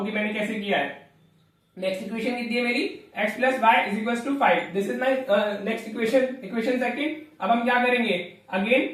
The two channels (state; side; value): identical; both; correlation 1.00